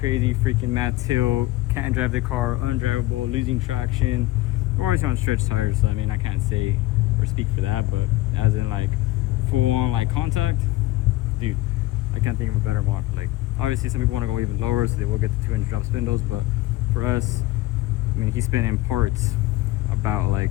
freaking mad tilt, can't drive the car, undrivable, losing traction. We're always on stretch tires, so I mean, I can't say or speak for that, but as in like full on like contact, dude, I can't think of a better mod. Like obviously some people want to go even lower, so they will get the 200 drop spindles, but for us, I mean, he's spending parts about like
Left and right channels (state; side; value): quieter; right; 18.1 dB